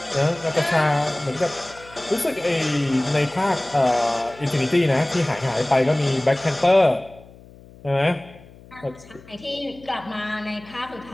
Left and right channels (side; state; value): left; noise; hum, 22 dB below the sound